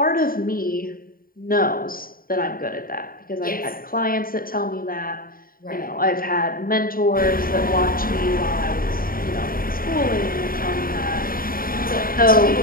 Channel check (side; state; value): right; late; 0.42 ms